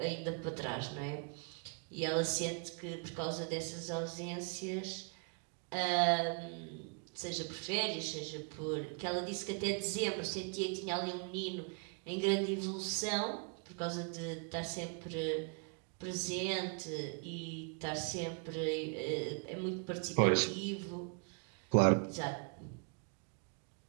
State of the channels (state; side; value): quieter; left; 39.3 dB